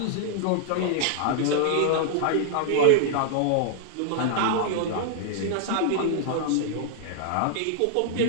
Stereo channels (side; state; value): both; different; correlation 0.00